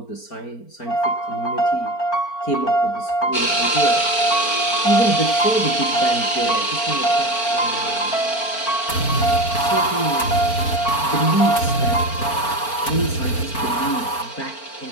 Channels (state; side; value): late; right; 4.4 ms